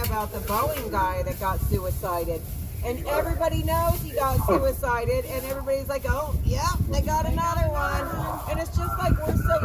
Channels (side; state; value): both; identical; correlation 1.00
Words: about the Boeing guy that got suicided, and everybody knows he got suicided, and everybody's like, oh, yeah, they got another one. And it's just like we're so